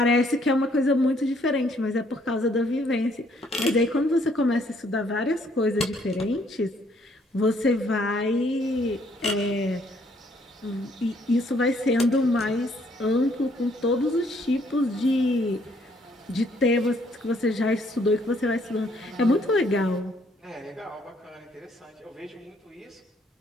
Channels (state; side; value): normal; both; correlation 0.66